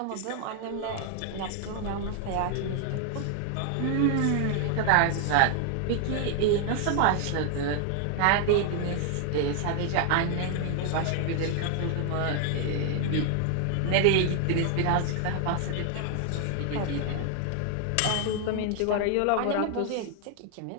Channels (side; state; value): both; different; correlation 0.00